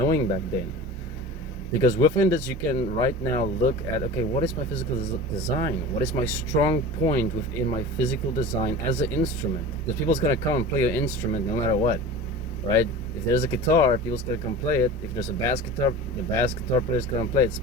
back then. Because within this you can right now look at, okay, what is my physical design? What is my strong point within my physical design as an instrument? Because people's gonna come and play your instrument no matter what, right? If there's a guitar, people's gonna come play it. If there's a bass guitar, the bass guitar player's gonna play it.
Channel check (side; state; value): both; normal; correlation 0.34